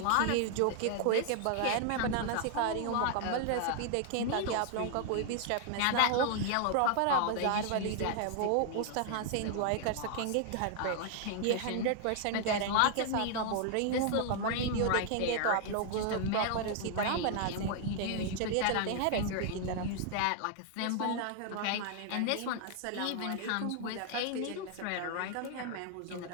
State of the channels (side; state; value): both; different; correlation 0.00